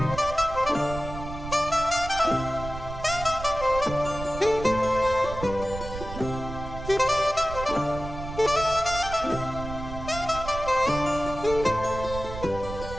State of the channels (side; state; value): right; noise; rumble, 9 dB below the sound